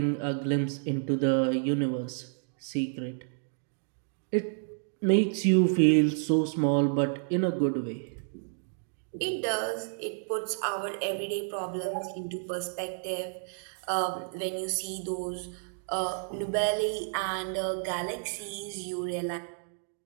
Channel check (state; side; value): silent; left; digital silence